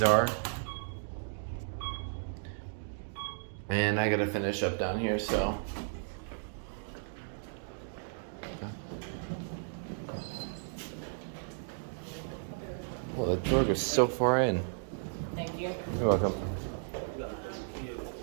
are. And I gotta finish up down here, so. Well, the door goes so far in. Thank you. You're welcome.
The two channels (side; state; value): left; silent; digital silence